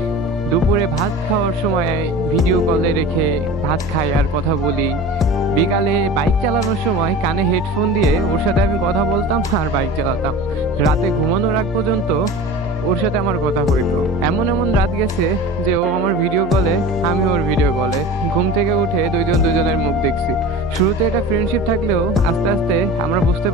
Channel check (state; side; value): noise; right; hum, 16 dB below the sound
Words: দুপুরে ভাত খাওয়ার সময় ভিডিও কলে রেখে ভাত খাই আর কথা বলি, বিকালে বাইক চালানোর সময় কানে হেডফোন দিয়ে ওর সাথে আমি কথা বলতাম আর বাইক চালাতাম। রাতে ঘুমানোর আগ পর্যন্ত ওর সাথে আমার কথা হইতো। এমন এমন রাত গেছে যে ও আমার ভিডিও কলে, আমি ওর ভিডিও কলে। ঘুম থেকে উঠে দুইজন দুইজনের মুখ দেখছি। শুরুতে এটা ফ্রেন্ডশিপ থাকলেও আস্তে আস্তে আমরা বুঝতে